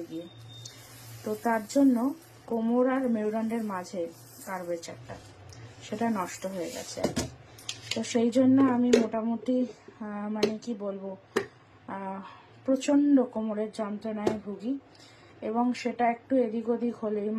গিয়ে। তো তার জন্য কোমর আর মেরুদণ্ডের মাঝে কার্ভেচারটা সেটা নষ্ট হয়ে গেছে। তো সেই জন্য আমি মোটামুটি মানে কি বলবো, প্রচণ্ড কোমরের যন্ত্রণায় ভুগি এবং সেটা একটু এদিক ওদিক হলেই,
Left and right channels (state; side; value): identical; both; correlation 1.00